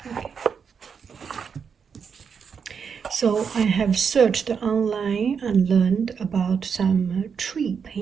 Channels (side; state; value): left; quieter; 6.4 dB